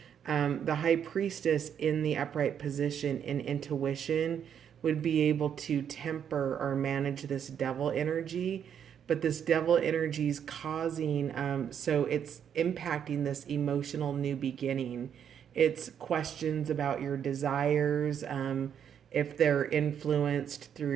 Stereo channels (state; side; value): quieter; left; 8.5 dB